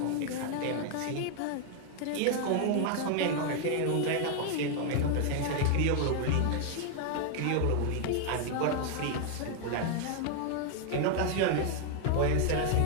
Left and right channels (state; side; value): different; both; correlation 0.00